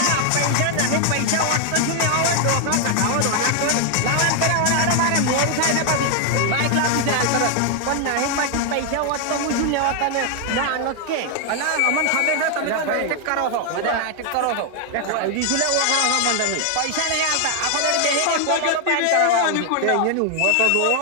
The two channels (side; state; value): both; different; correlation 0.00